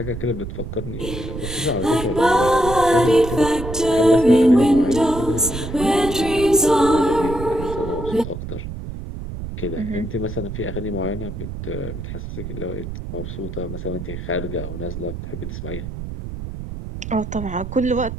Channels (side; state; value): right; noise; rumble, 8 dB below the sound